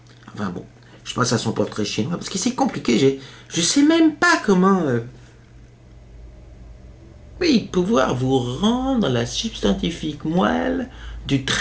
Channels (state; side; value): identical; both; correlation 1.00